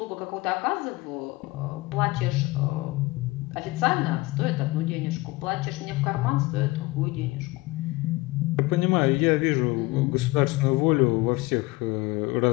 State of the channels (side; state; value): right; quieter; 21.8 dB